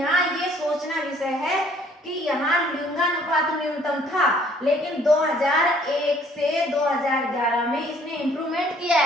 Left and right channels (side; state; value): both; normal; correlation 0.60